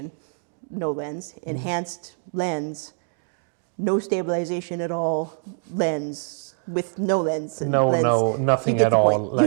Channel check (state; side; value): silent; left; 62 dB below the other